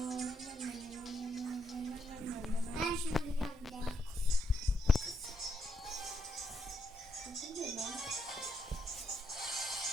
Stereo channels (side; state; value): both; normal; correlation 0.80